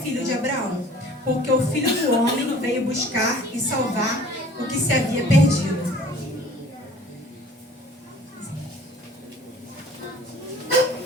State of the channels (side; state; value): both; normal; correlation 0.50